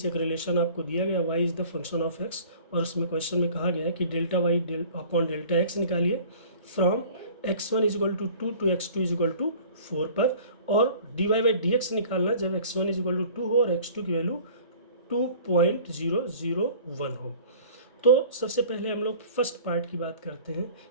एक रिलेशन आपको दिया गया, y is the function of x, और उसमें क्वेश्चन में कहा गया है कि delta y upon delta x निकालिए from x1 is equal to 2 to x2 is equal to 4 पर, और dy बाई dx निकालना जब x1 इज इक्वल टू 2 हो और x2 की वैल्यू 2.001 हो। तो सबसे पहले हम लोग फर्स्ट पार्ट की बात करते हैं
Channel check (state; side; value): inverted; both; correlation -0.47